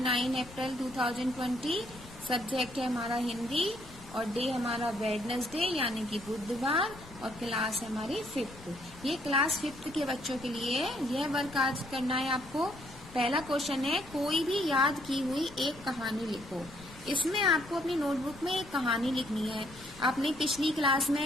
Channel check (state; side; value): noise; left; rumble, 19 dB below the sound